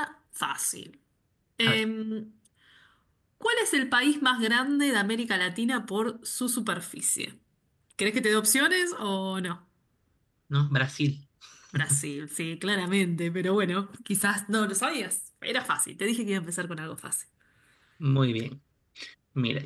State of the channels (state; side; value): identical; both; correlation 1.00